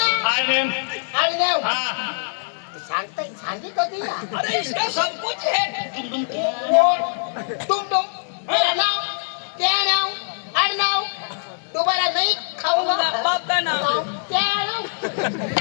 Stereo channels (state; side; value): silent; right; 62 dB below the other